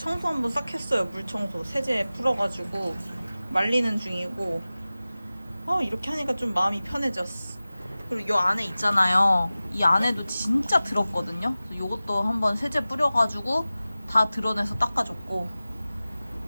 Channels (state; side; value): inverted; both; correlation -0.97